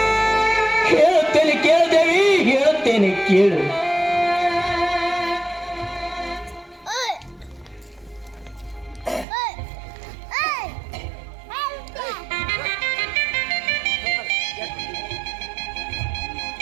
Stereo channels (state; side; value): drops out; left; at 9.2 s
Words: ಹೇಳುತ್ತೇನೆ ಕೇಳ್ದೇವಿ, ಹೇಳುತ್ತೇನೆ ಕೇಳು.